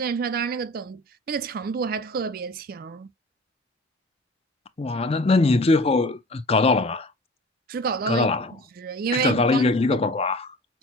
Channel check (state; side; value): normal; both; correlation 0.42